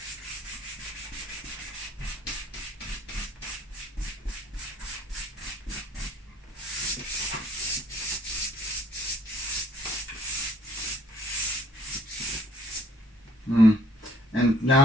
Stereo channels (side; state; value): both; normal; correlation 0.60